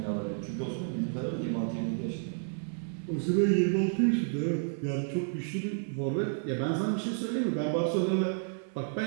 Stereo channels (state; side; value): silent; left; 57 dB below the other